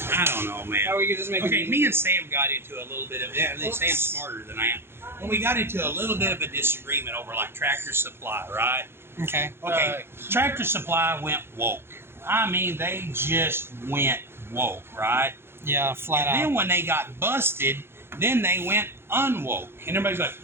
I don't know, man. How we could just make Okay, me and Sam got into a little bit of that. Sam's smarter than I am. When we got into a little bit of a disagreement over like Tractor Supply, right? Okay. Okay, Tractor Supply went woke. I mean, they just went woke, right? Yeah, flat And out. then when they got busted, then they went unwoke. And everybody's like,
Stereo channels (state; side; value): late; left; 0.11 ms